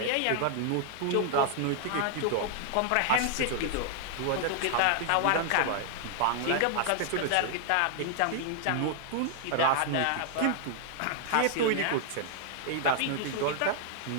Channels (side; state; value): both; different; correlation 0.00